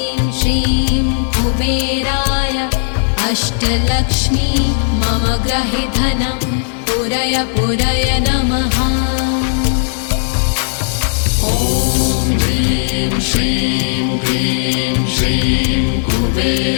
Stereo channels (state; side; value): silent; right; digital silence